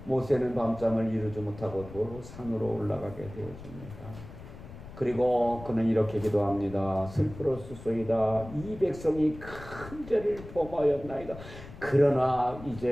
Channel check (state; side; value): noise; left; rumble, 15 dB below the sound